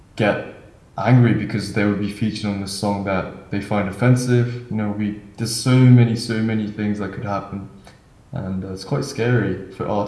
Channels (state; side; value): identical; both; correlation 1.00